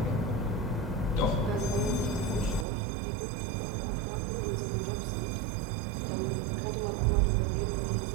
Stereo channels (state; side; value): drops out; left; at 2.7 s